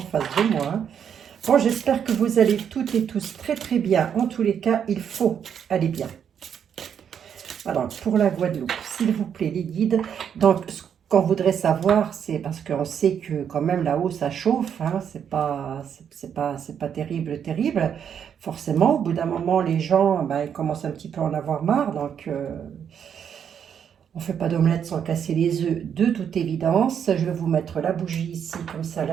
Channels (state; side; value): quieter; left; 8.2 dB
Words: de moi, hein. Bon, j'espère que vous allez toutes et tous très très bien. En tous les cas, il faut aller bien. Alors, pour la Guadeloupe, s'il vous plaît, les guides. Donc, ce qu'on voudrait savoir, c'est parce qu'on sait que quand même là-haut, ça chauffe, hein, c'est pas terrible, terrible. Forcément, au bout d'un moment, les gens, ils commencent un petit peu à en avoir marre. Donc, on ne fait pas d'omelette sans casser les œufs, de toute évidence. Je vais vous mettre la bougie ici, comme ça,